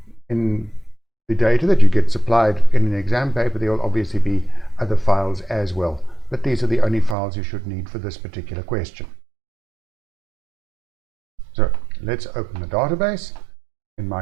In the data that you get supplied in an exam paper, there will obviously be other files as well, but these are the only files you should need for this particular question. So let's open the database in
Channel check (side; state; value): left; drops out; at 7.2 s